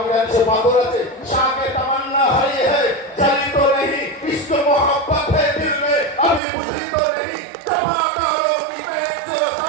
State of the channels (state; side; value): drops out; left; at 6.4 s